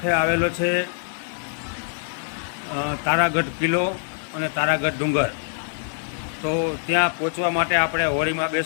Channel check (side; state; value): right; silent; digital silence